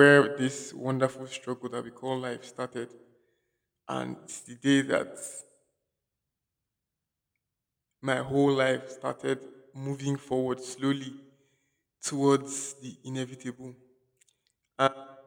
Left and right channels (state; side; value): identical; both; correlation 1.00